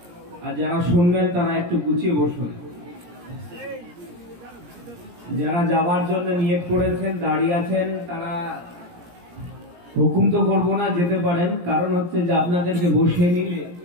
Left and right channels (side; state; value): left; late; 17 ms